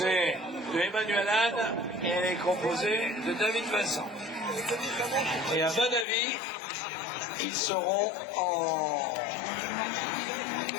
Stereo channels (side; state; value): right; drops out; at 6.1 s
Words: de Emmanuel Anne et elle est composée de David Vincent. Et à mon avis, ils seront